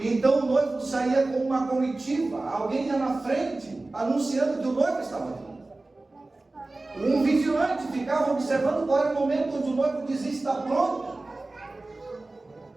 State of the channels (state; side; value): quieter; left; 3.1 dB